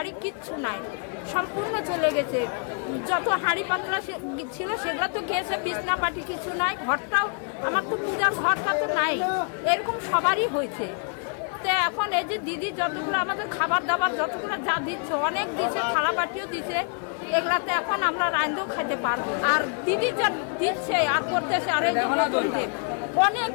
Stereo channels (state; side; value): quieter; right; 39.2 dB